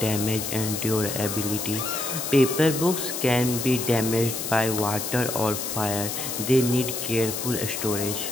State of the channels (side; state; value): left; noise; hiss, 4 dB below the sound